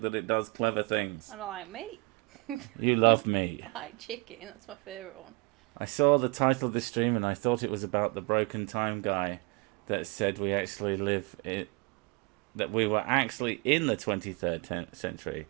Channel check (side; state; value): left; quieter; 26.7 dB